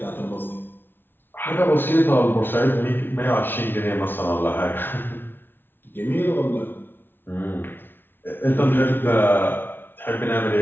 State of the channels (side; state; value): right; late; 0.10 ms